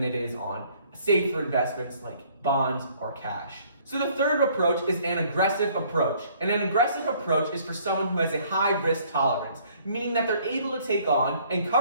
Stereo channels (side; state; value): both; inverted; correlation -0.60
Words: it is on safer investments like bonds or cash. So the third approach is an aggressive approach. And an aggressive approach is for someone who has a high risk tolerance, meaning that they're able to take on and